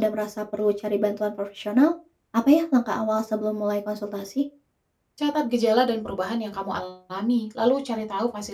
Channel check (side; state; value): both; identical; correlation 1.00